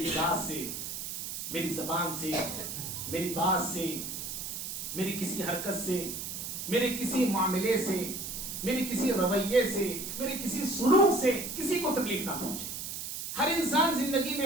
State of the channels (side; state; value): right; noise; hiss, 6 dB below the sound